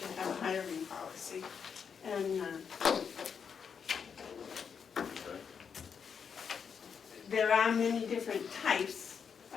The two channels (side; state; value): right; quieter; 6.7 dB